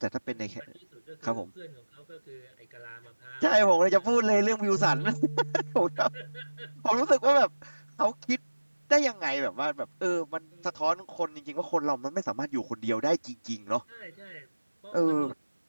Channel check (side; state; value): both; inverted; correlation -1.00